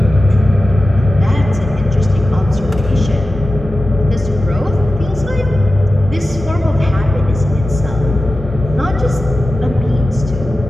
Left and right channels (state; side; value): normal; both; correlation 0.94